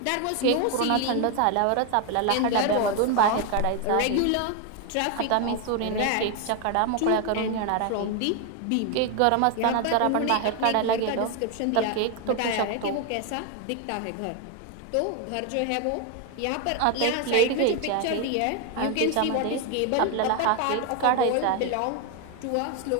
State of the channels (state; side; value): different; both; correlation 0.01